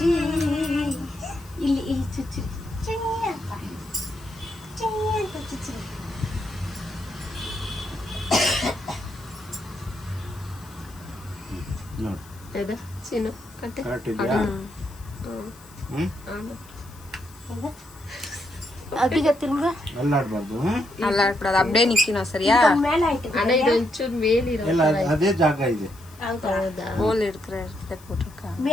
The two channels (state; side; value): noise; left; hiss, 23 dB below the sound